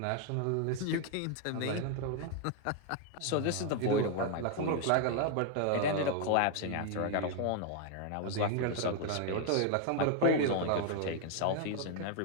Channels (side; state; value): both; different; correlation 0.00